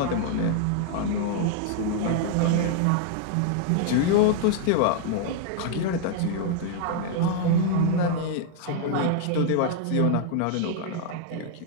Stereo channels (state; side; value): different; both; correlation 0.00